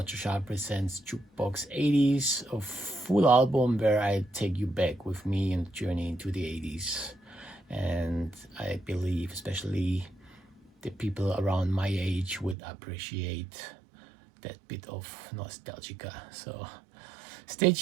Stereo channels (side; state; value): left; drops out; at 12.6 s